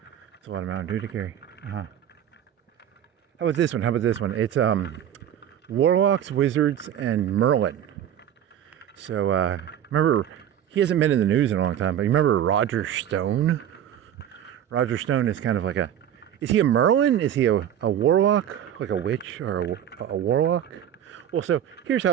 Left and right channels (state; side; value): quieter; left; 10.2 dB